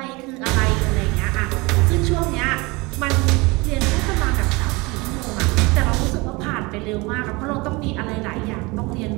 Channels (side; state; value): left; quieter; 25.0 dB